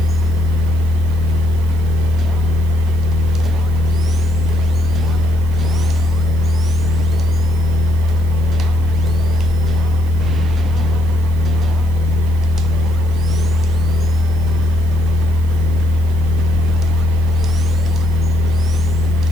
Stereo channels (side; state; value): left; noise; hiss, 26 dB below the sound